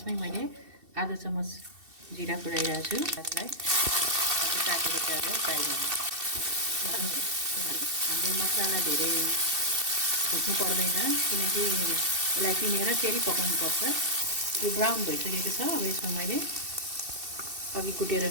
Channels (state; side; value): late; left; 2.7 ms